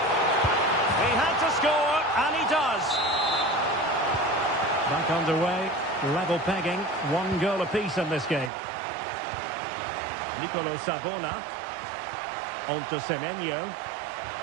He had to score, and he does. Back underway. Level pegging. 1 goal apiece in this game. Nicolo Sabona. On to Semenyo.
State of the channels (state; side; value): drops out; left; at 8.5 s